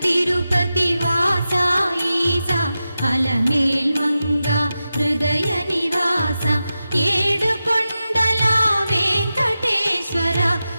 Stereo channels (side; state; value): both; inverted; correlation -0.92